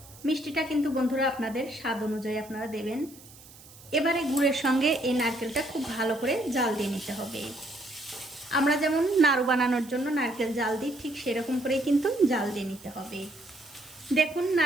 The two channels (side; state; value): right; noise; hiss, 21 dB below the sound